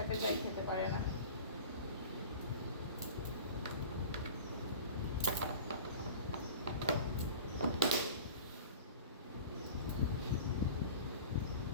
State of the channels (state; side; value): inverted; both; correlation -0.39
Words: যাই খেতে পারে না।